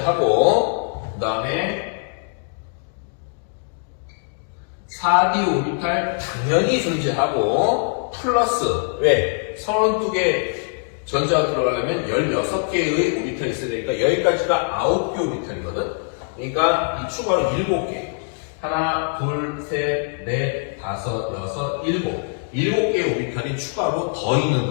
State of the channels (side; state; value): right; silent; 61 dB below the other